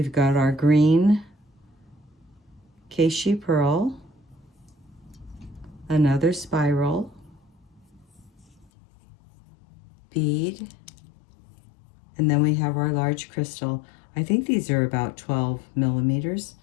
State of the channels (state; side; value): drops out; right; at 8.7 s